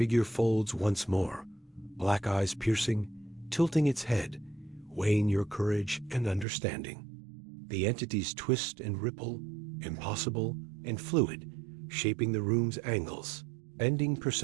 folds once more, black eyes piercing, tilting its head, weighing your courage and understanding. The entities twist and ripple, impossible and fluid, shaping the room's angles, bending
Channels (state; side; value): drops out; left; at 6.5 s